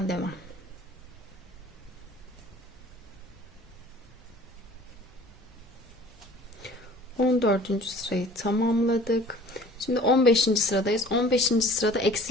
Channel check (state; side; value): normal; both; correlation 0.49